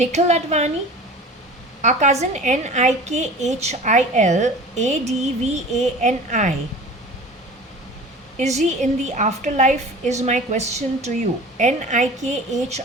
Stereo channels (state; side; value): normal; both; correlation 0.39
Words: Advani? Our cousin Nikhil. Is he in the afterlife is my question to you. Nikhil